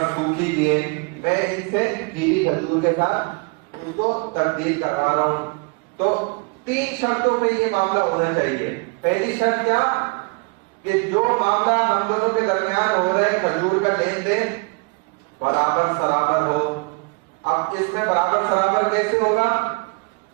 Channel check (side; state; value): left; quieter; 32.4 dB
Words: سوکھی بھی ہے، میں ان سے گیلی کھجور کے ساتھ اس کو تبدیل کروا رہا ہوں، تو 3 شرطوں پہ یہ معاملہ ہونا چاہیے۔ پہلی شرط کیا کہ جو معاملہ ہم دونوں کے درمیان ہو رہا ہے کھجور کا لین دین برابر سرابر ہو۔ اب اس میں برابر سرابر کیسے ہوگا